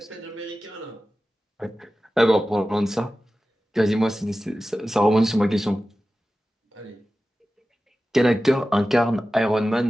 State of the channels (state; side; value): normal; both; correlation 0.95